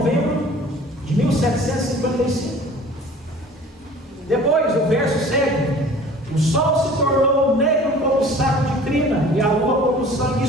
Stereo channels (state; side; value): normal; both; correlation 0.46